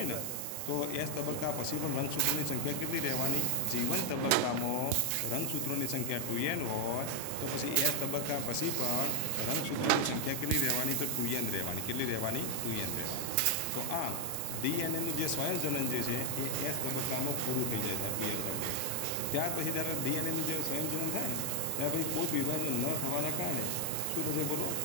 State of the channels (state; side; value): different; both; correlation 0.00